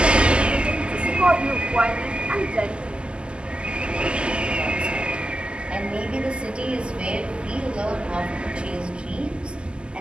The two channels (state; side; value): late; left; 0.050 ms